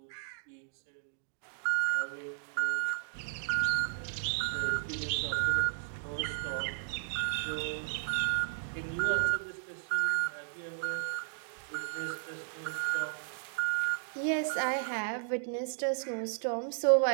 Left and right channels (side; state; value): left; silent; digital silence